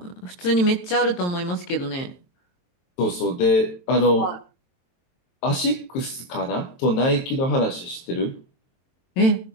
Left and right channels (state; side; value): late; right; 23 ms